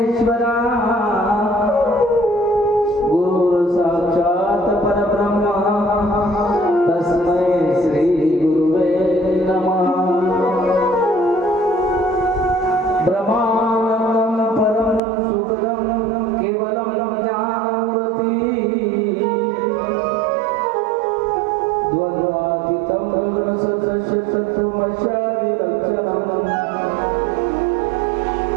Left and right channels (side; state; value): left; drops out; at 15.0 s